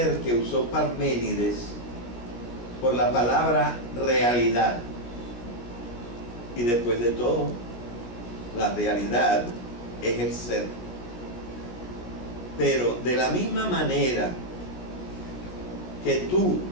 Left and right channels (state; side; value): late; right; 17 ms